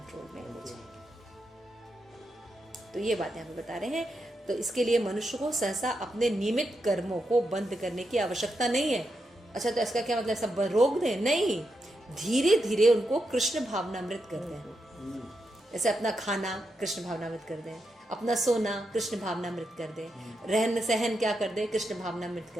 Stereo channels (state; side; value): normal; both; correlation 0.85